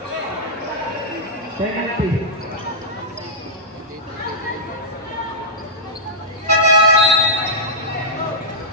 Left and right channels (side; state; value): both; normal; correlation -0.12